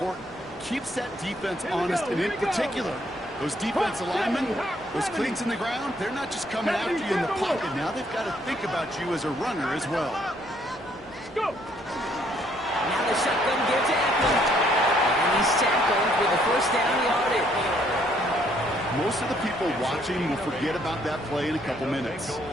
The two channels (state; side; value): noise; right; hum, 27 dB below the sound